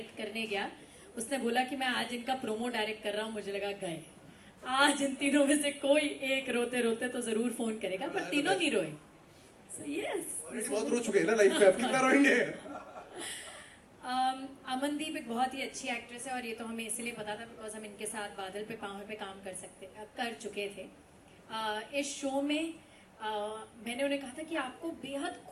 करने गया, उसने बोला कि मैं आज इनका प्रोमो डायरेक्ट कर रहा हूँ, मुझे लगा गए आज इन तीनों में से कोई एक रोते रोते तो जरूर फोन करेगा, पर तीनों नहीं रोए। So yes, बहुत रो चुके हैं ना लाइफ में, अब कितना रोएंगे? अमनदीप एक बहुत ही अच्छी एक्ट्रेस है, और ये तो हमें इसलिए पता था बिकॉज हम इनके साथ बादल पे पाँव पे काम कर चुके थे। इस शो में मैंने उन्हें कहा था कि आपको बेहद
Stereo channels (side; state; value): both; identical; correlation 1.00